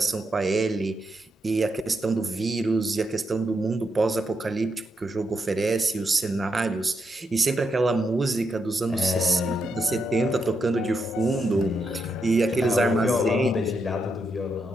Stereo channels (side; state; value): both; normal; correlation 0.82